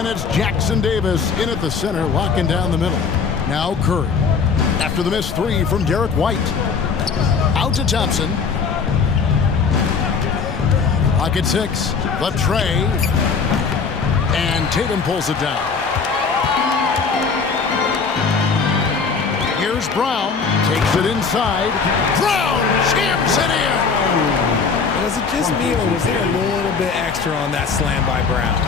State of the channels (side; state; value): right; quieter; 5.4 dB